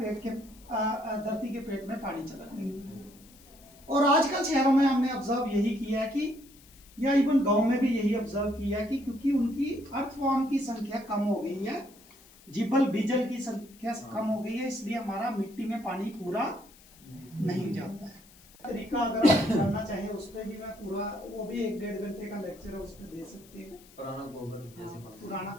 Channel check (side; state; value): left; noise; hiss, 24 dB below the sound